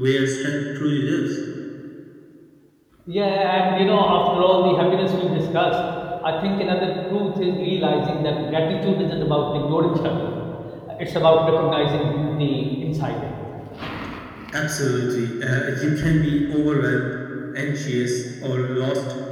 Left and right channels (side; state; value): both; identical; correlation 1.00